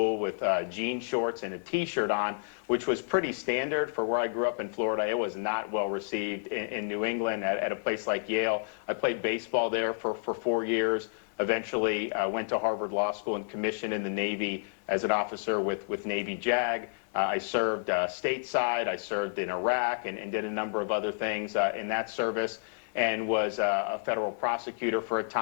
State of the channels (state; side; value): silent; right; digital silence